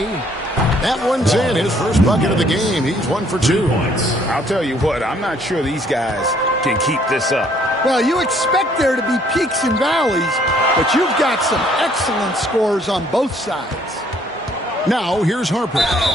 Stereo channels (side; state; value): both; normal; correlation 0.63